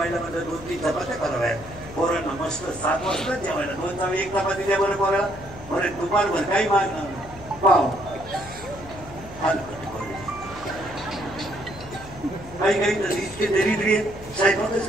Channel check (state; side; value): noise; left; hum, 16 dB below the sound